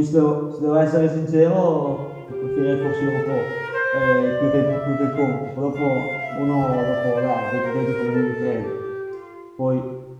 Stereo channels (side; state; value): both; identical; correlation 1.00